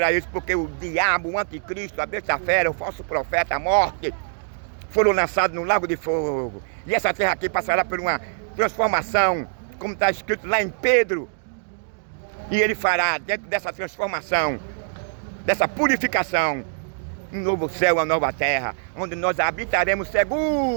isso, porque o diabo, o anticristo, a besta-fera, o falso profeta, a morte, foram lançados no lago de fogo. E essa terra aqui passará por uma transformação, como está escrito lá em Pedro. E ele fará, dentro dessa transformação, dessa purificação, um novo céu, uma nova terra, onde nós habitaremos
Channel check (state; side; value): silent; left; digital silence